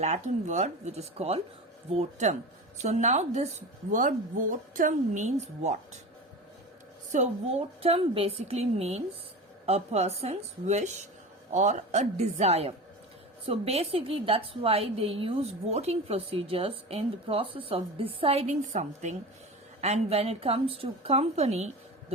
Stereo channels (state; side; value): normal; both; correlation 0.30